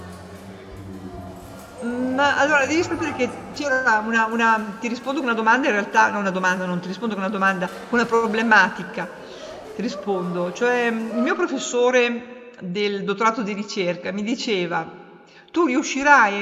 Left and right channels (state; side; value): identical; both; correlation 1.00